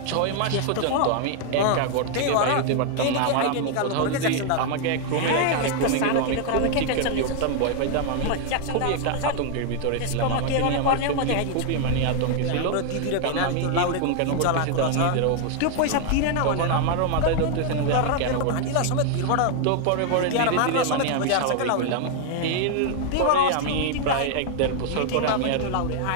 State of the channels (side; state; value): both; different; correlation 0.00